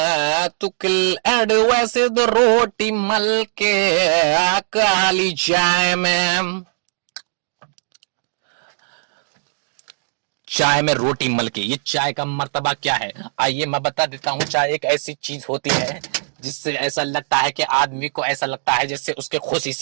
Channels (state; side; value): silent; left; digital silence